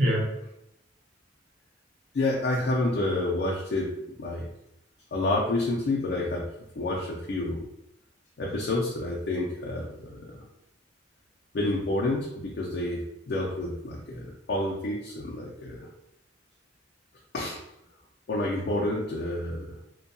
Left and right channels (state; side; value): normal; both; correlation 0.48